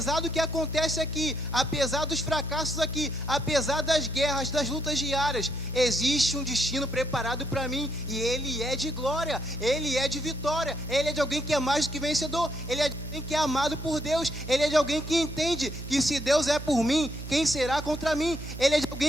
do que acontece aqui, apesar dos fracassos aqui, apesar das guerras, das lutas diárias, existe um destino preparado para mim e ele é de glória, ele é de vitória, ele é de alguém que é mais do que vencedor, ele é de alguém que é amado por Deus, ele é de alguém que entende que se Deus é por mim, quem será contra mim? Ele é de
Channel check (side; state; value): left; noise; hum, 8 dB below the sound